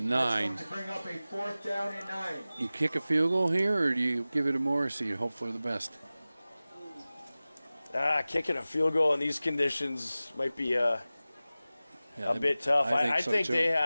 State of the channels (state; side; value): inverted; both; correlation -0.97